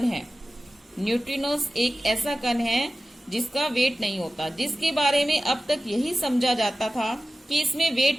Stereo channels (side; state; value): both; normal; correlation 0.95